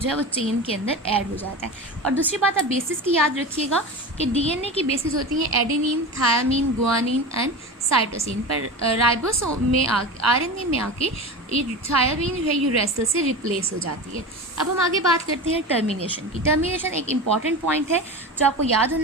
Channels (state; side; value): normal; both; correlation 0.28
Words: जो है वो चेन के अंदर ऐड हो जाता है। और दूसरी बात आप बेसिस की याद रखिएगा कि DNA की बेसिस होती हैं adenine, thiamine, guanine and cytosine, पर राइबोसोम में RNA में आके ये थायामीन जो है यूरेसिल से रिप्लेस हो जाती है। अब हम आगे बात करते हैं टर्मिनेशन की। टर्मिनेशन एक इंपॉर्टेंट पॉइंट है जो आपको याद